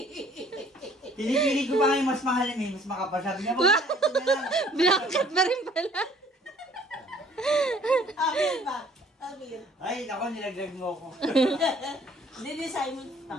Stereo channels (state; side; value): normal; both; correlation 0.57